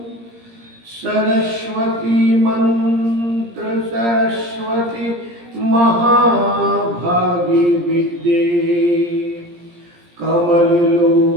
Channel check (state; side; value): late; left; 17 ms